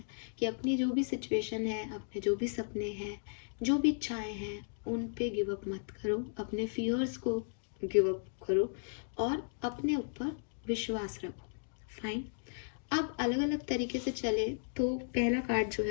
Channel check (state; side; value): silent; right; digital silence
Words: कि अपनी जो भी सिचुएशन है, अपने जो भी सपने हैं, जो भी इच्छाएं हैं, उन पे गिव अप मत करो, अपने फियर्स को गिव अप करो और अपने ऊपर विश्वास रखो। फाइन। अब अलग अलग तरीके से चले तो पहला कार्ड जो